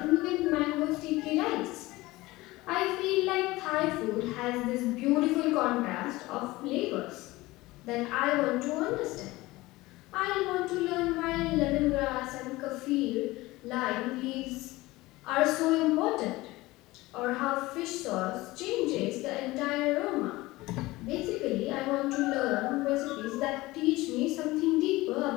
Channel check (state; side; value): quieter; right; 19.7 dB